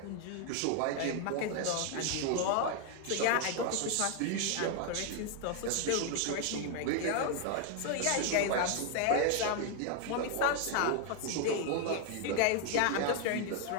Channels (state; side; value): different; both; correlation 0.00